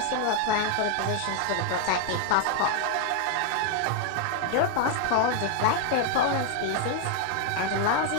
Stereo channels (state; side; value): different; both; correlation 0.00